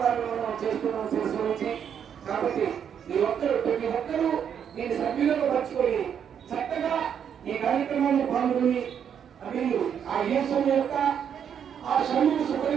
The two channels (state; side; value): quieter; left; 8.2 dB